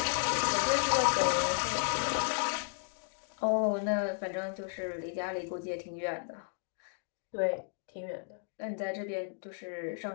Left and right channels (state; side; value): silent; right; digital silence